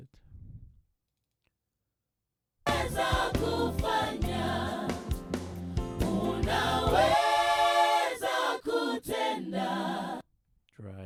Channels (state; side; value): identical; both; correlation 1.00